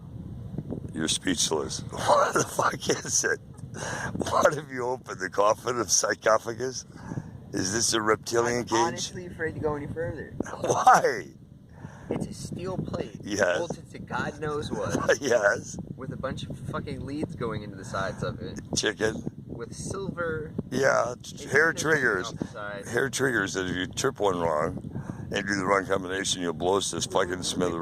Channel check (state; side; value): identical; both; correlation 1.00